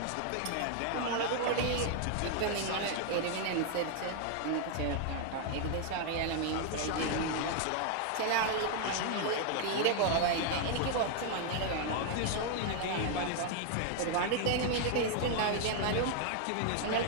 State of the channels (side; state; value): both; different; correlation 0.00